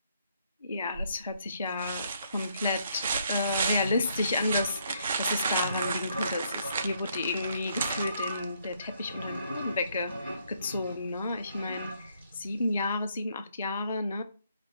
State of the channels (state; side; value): inverted; both; correlation -0.70